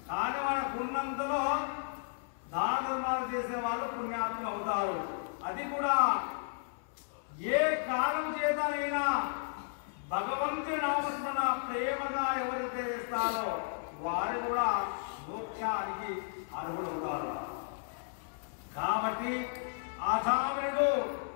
కానీ మనకున్నంతలో దాన ధర్మాలు చేసే వాళ్ళు పుణ్యాత్ములు అవుతారు. అది కూడా ఏ కాలం చేతనైనా భగవంతుని నామస్మరణ ప్రేమగా ఎవరైతే వేస్తారో వారు కూడా మోక్షానికి అర్హులవుతారు. కాబట్టి అజామినుడు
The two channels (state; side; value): silent; right; 55 dB below the other